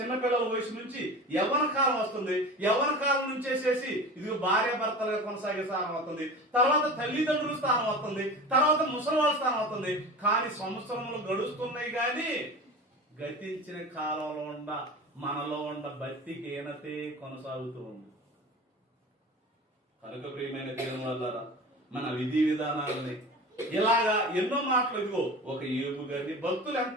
వయసు నుంచి యవ్వన కాలం వస్తుంది. యవ్వన కాలం నుంచి వేసేసి ఇది భార్య భర్తలుగా కొనసాగే స్థానం అవుతుంది. తర్వాత తల్లిదండ్రుల స్థానం అవుతుంది. తర్వాత ముసలివాళ్ళ స్థానం అవుతుంది. కానీ సంవత్సరములు గడుస్తున్నాయి కానీ గతించిన కాలంలో మనలో ఉన్న భక్తి హీనతే కొనసాగుతూ ఉంది. కనుక ప్రియమైన దేవుని వల్ల మన విధి విధానాలని ఇలాగా ఎన్నో మాటలు. ఇదిగో ఒక యోబు గారిని, భక్తులు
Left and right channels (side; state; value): both; normal; correlation 0.34